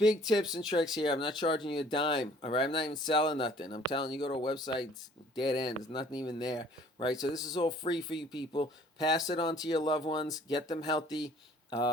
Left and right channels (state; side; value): normal; both; correlation 0.55